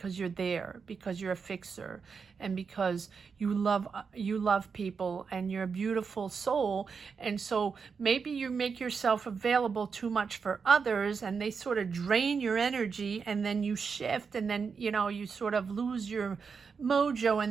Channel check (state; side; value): quieter; left; 5.6 dB